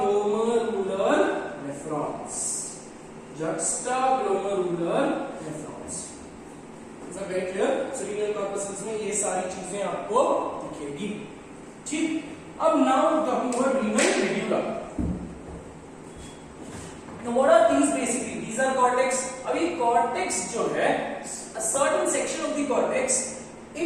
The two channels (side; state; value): both; identical; correlation 1.00